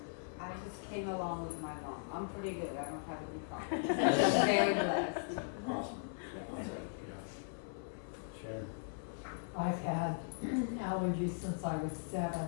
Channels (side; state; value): right; silent; 52 dB below the other